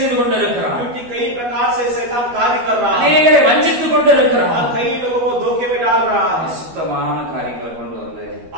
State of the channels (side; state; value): left; late; 12 ms